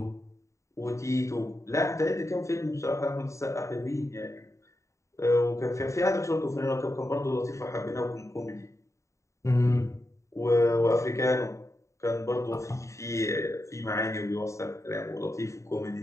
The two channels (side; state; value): right; late; 0.14 ms